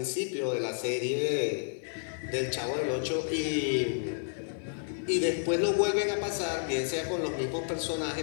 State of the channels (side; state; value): right; silent; digital silence